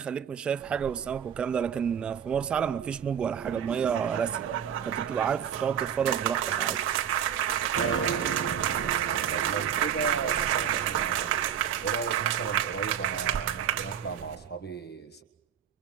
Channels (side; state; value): left; quieter; 8.6 dB